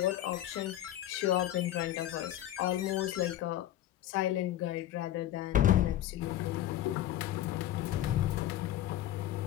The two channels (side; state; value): right; quieter; 13.0 dB